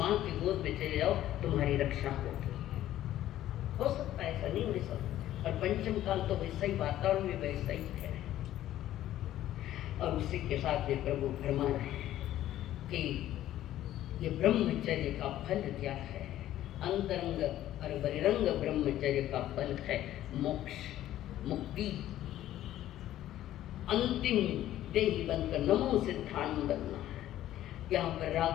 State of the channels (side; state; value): right; quieter; 13.2 dB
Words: की गोद में चले जाओ, तुम्हारी रक्षा होगी। हो सकता है, ऐसा नहीं हो सकता। और पंचम काल तो वैसा ही, वातावरण भी वैसा ही है। और उसी के साथ ये प्रभु फरमा रहे हैं कि ये ब्रह्मचर्य का फल क्या है। अंतरंग और बहिरंग ब्रह्मचर्य का फल है मोक्ष, मुक्ति, अंतिम देही बनकर नमो सिद्धांत बनना है। यहाँ पर